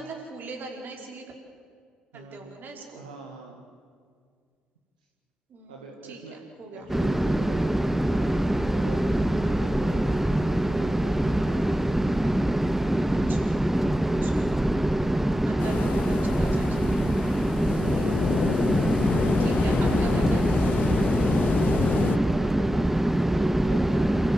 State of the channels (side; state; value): both; normal; correlation 0.92